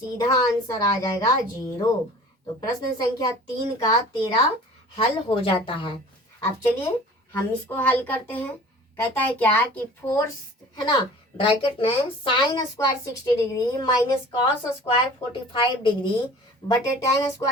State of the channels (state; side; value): normal; both; correlation 0.45